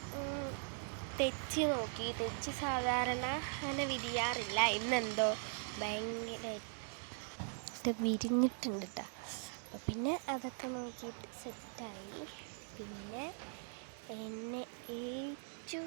തെച്ചി നോക്കി. തെച്ചി സാധാരണ അങ്ങനെ വിരിയാറില്ല, ഇന്നെന്തോ ഭയങ്കരമായിട്ട് വിരിഞ്ഞിട്ടുണ്ട് കേട്ടോ. പിന്നെ അതൊക്കെ നോക്കിയിട്ട് സെറ്റായി. പിന്നെ എന്നെ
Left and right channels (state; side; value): silent; left; 51 dB below the other